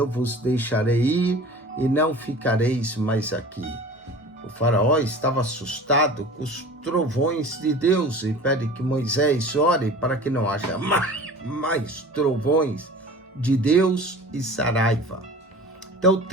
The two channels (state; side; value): normal; both; correlation 0.41